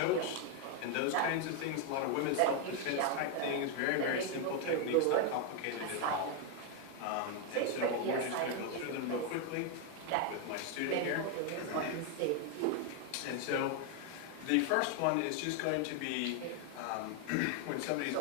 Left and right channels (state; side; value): different; both; correlation 0.01